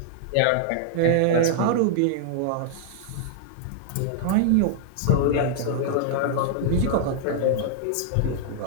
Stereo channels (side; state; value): both; different; correlation 0.00